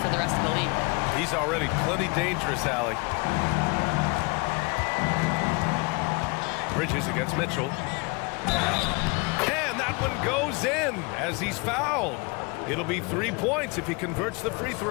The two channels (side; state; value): right; quieter; 28.7 dB